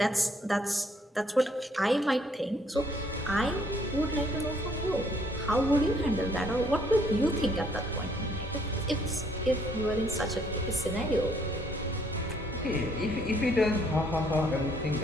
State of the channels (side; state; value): both; normal; correlation 0.66